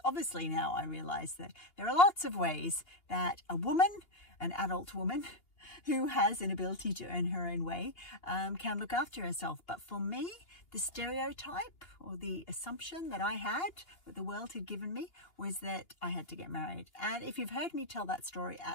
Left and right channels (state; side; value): late; right; 2.8 ms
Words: obviously now I realize that there are lots of ways that a woman, an adult woman, who has an ability to earn her own way, can look after herself. But for me, the stereotype or the assumption that I had, that the world had given me, was that I had to get married. And if you've heard me tell that story